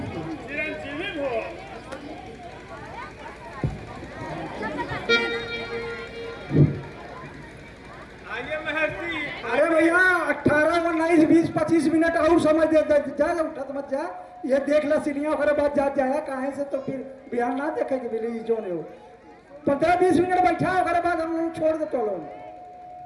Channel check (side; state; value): both; identical; correlation 1.00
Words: चिरंजीवी भव। आइए महर्षि। अरे भैया 18, 19, 20, 25 मिनट और समय दे जा, उठत मत जा। ये देख ला सीढ़ियाँ ओकरे बाद जा जाया काहे से, तो फिर बिहार ना देखेगी बिली जो ने हो। 15-20 मिनट बैठा ओकरे बाद हम लोग छोड़ दे तो लोग।